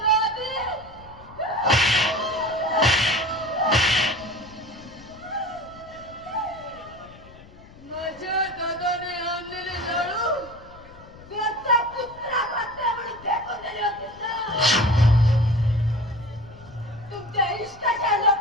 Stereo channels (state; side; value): noise; left; rumble, 21 dB below the sound